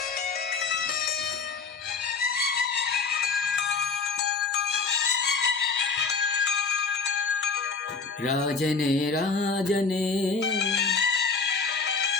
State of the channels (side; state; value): right; quieter; 4.7 dB